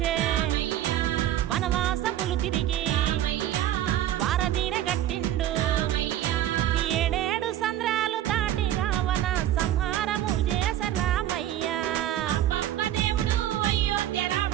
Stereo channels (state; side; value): quieter; left; 12.3 dB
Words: వనవాసములు తిరిగి వారదీన గట్టిండు. ఏడేడు సంద్రాలు దాటి రావణ సంహారము చేసే రామయ్య.